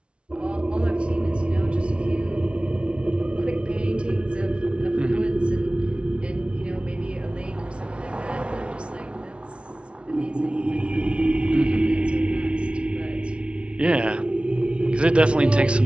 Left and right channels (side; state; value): left; late; 0.059 ms